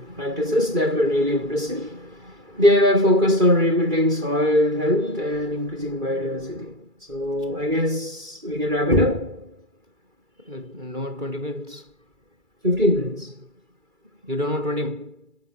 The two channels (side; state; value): left; late; 2.3 ms